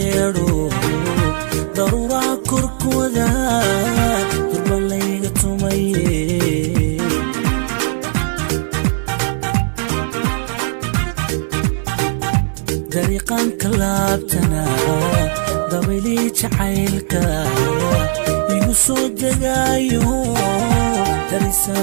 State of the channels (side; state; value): left; silent; 60 dB below the other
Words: darura korkooda durbalayga tumaye dariiqan kalaabtana dabili jacaylka igu soo degaayo